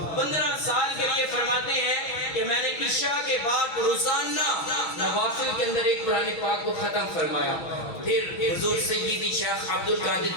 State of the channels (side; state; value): right; late; 6.2 ms